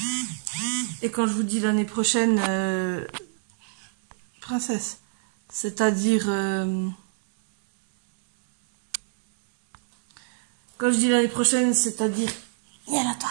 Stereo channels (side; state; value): left; silent; digital silence